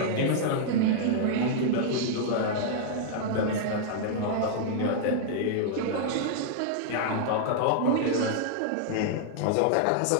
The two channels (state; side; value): different; both; correlation -0.01